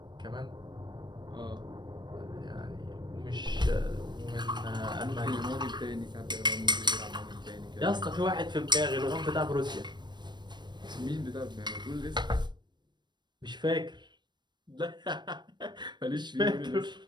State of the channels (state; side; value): late; left; 0.22 ms